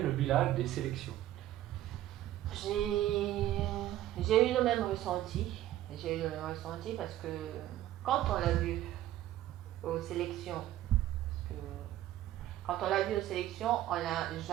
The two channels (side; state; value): left; quieter; 13.5 dB